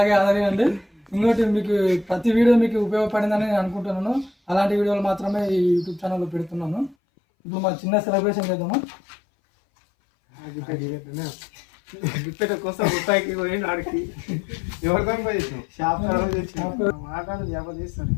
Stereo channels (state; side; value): drops out; right; at 7.0 s